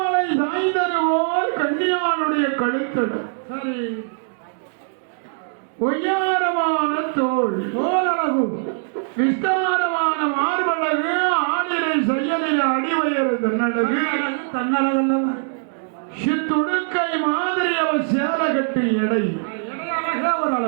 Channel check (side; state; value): left; silent; digital silence